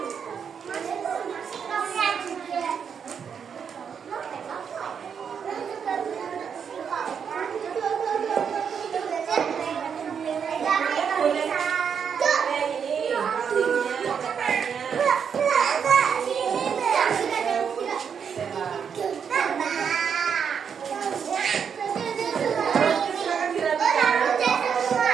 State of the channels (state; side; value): quieter; left; 7.1 dB